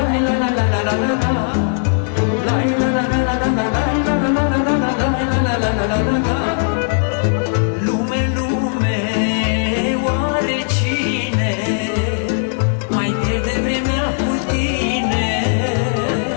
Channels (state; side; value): silent; right; digital silence